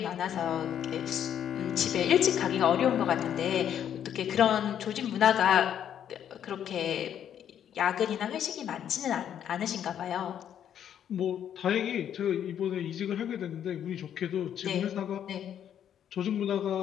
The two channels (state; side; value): quieter; right; 9.6 dB